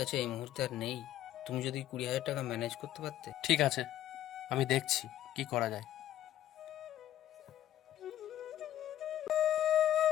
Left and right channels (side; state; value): right; quieter; 12.5 dB